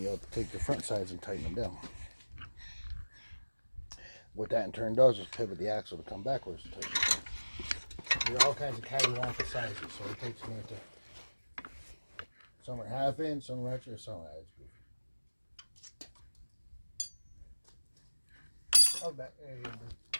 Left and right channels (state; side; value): inverted; both; correlation -1.00